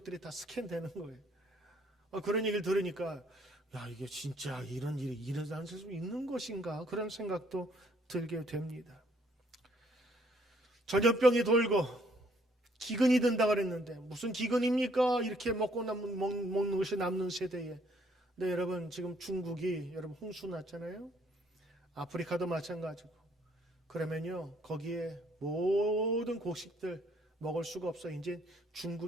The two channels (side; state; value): both; normal; correlation 0.65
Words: 다 스캔되는 거예요. 그런 얘기를 들으니까 야, 이게 진짜 이런 일이 일어날 수 있는 것인가 그런 생각도 들게 됩니다. 전염병이 돌고 기근이 든다 그랬는데 무슨 기근입니까? 이렇게 먹는 것이 남는 세대에. 네, 여러분 지금 중국이 여러분 홍수 났잖아요. 아프리카도 마찬가지고. 그러면요 거기에 모든 곡식들 먹을 수가 없어. 이제